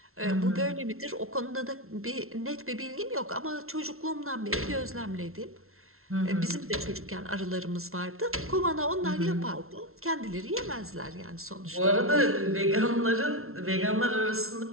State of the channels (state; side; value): late; left; 0.62 ms